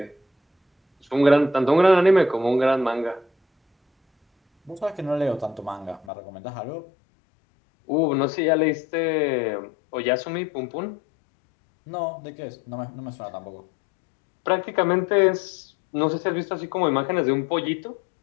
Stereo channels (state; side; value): drops out; right; at 6.1 s